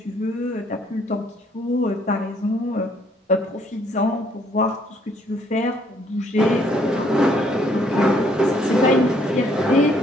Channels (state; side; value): normal; both; correlation 0.66